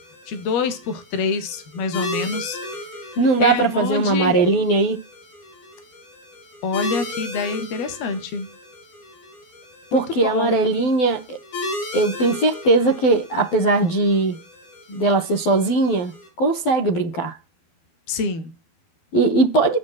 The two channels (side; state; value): right; late; 12 ms